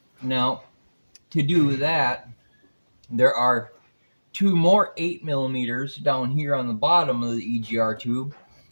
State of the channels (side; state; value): both; inverted; correlation -1.00